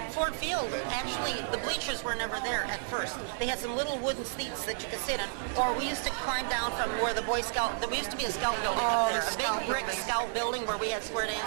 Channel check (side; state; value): left; silent; 57 dB below the other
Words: Ford Field, actually, the bleachers were never there at first. They had some little wooden seats that you could sit in, or we used to climb down from where the Boy Scout, there used to be a Scout building up there, a big brick Scout building where we had square